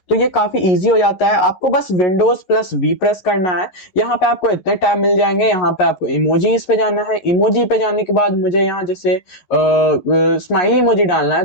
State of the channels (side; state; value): right; late; 11 ms